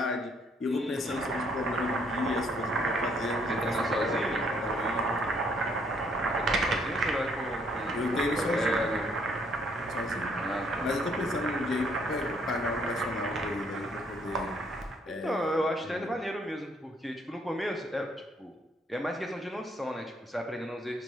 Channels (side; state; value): both; normal; correlation 0.67